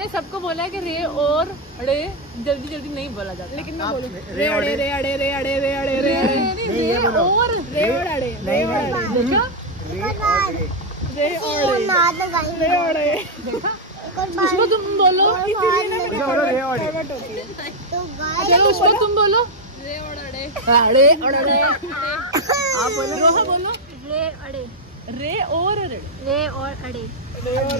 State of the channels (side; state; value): both; normal; correlation 0.01